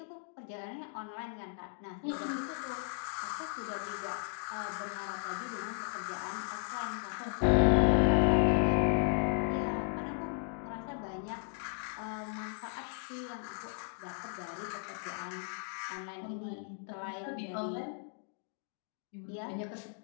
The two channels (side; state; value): right; silent; 54 dB below the other